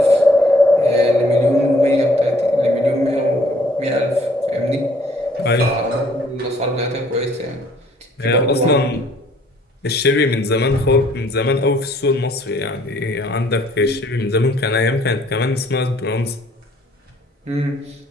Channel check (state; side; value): normal; both; correlation 0.61